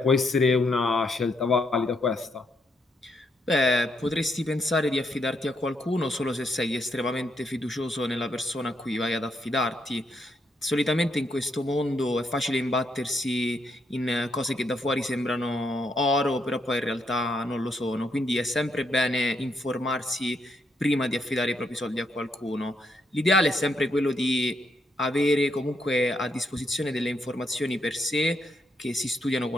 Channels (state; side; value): normal; both; correlation 0.77